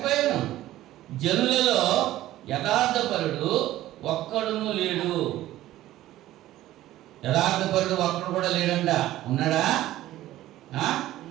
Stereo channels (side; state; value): left; quieter; 14.8 dB